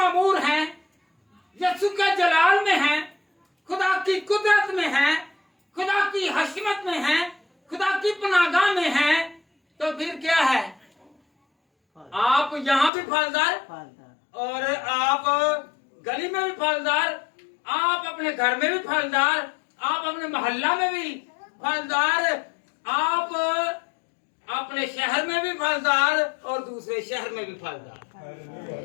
हैं, यीशु के जलाल में हैं, खुदा की कुदरत में हैं, खुदा की हशमत में हैं, खुदा की पनागाह में हैं, तो फिर क्या है? आप यहाँ भी फलदार और आप गली में भी फलदार, आप अपने घर में भी फलदार, आप अपने मोहल्ला में भी फलदार, आप अपने शहर में भी फलदार और दूसरे शहर में भी फलदार।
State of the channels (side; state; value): right; drops out; at 12.9 s